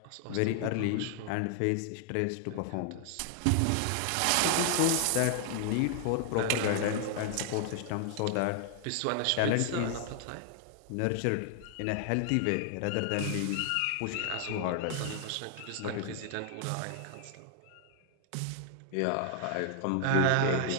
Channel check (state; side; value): different; both; correlation 0.00